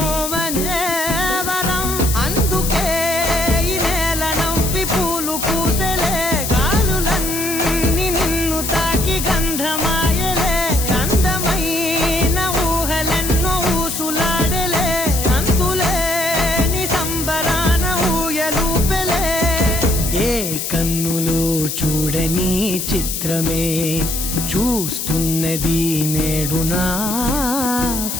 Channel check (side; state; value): left; noise; hiss, 4 dB below the sound